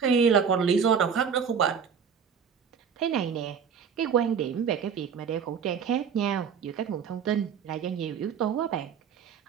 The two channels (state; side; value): quieter; left; 6.9 dB